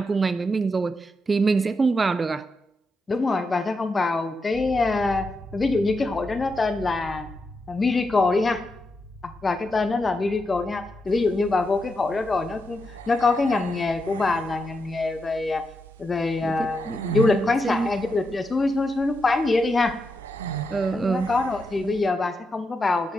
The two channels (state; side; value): normal; both; correlation 0.85